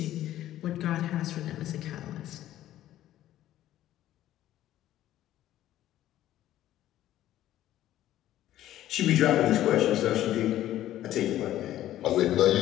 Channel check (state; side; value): quieter; right; 13.3 dB